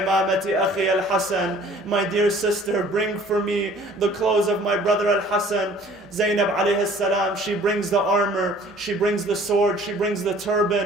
akhi al-Hasan. My dear sister, bring for me the clothes of my brother al-Hasan. Zainab alayhi salam, she brings the armor, she brings the sword, she brings the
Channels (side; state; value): both; normal; correlation 0.52